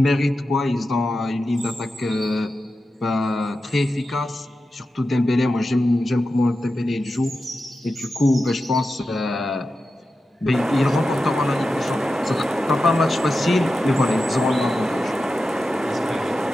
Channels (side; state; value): both; normal; correlation 0.91